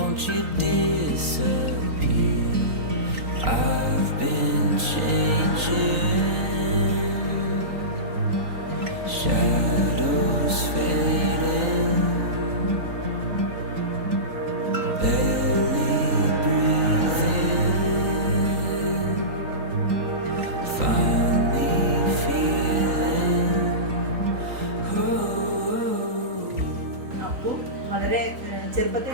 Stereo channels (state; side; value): late; left; 3.9 ms